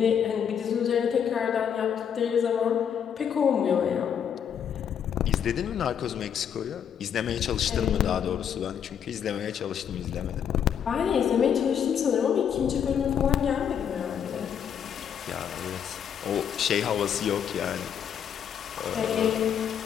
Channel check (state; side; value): quieter; right; 8.3 dB